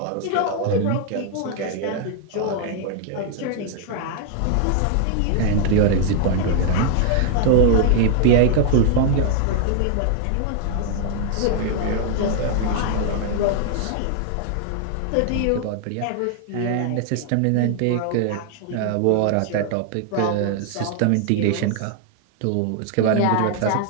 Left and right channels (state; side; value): different; both; correlation 0.00